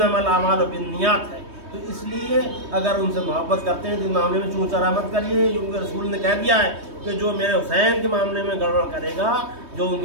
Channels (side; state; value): left; late; 3.2 ms